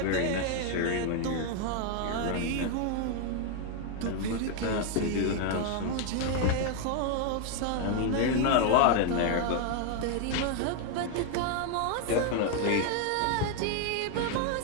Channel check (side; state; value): both; different; correlation 0.00